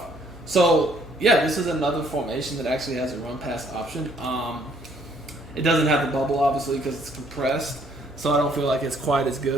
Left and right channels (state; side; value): normal; both; correlation 0.65